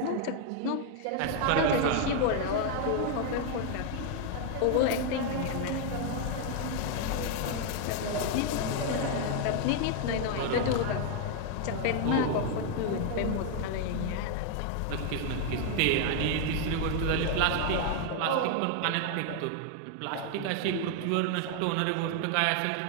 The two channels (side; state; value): both; different; correlation 0.00